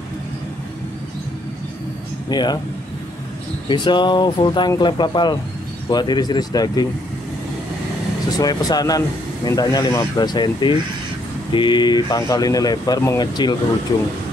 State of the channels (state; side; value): normal; both; correlation 0.70